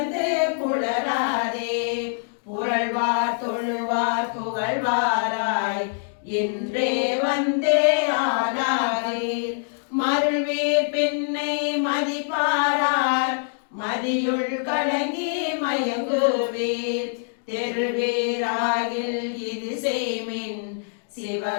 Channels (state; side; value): silent; right; digital silence